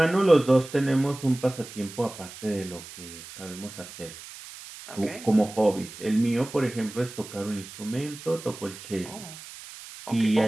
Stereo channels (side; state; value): right; noise; hiss, 15 dB below the sound